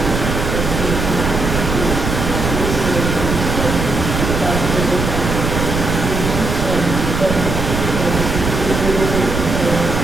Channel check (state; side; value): noise; right; rumble, 3 dB below the sound